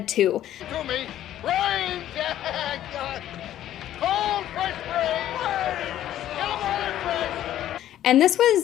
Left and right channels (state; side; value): quieter; right; 12.3 dB